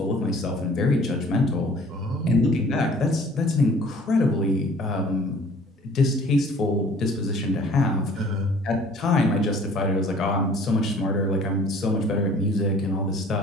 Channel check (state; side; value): normal; both; correlation 0.52